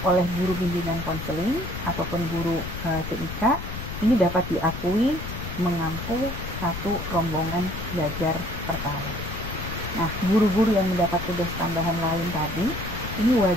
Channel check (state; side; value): noise; left; rumble, 8 dB below the sound